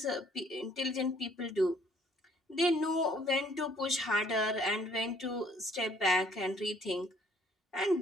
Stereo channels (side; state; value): both; normal; correlation 0.61